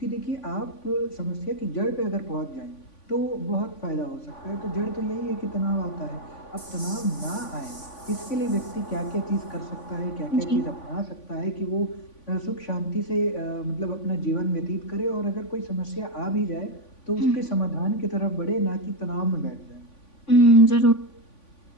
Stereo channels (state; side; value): late; right; 3.5 ms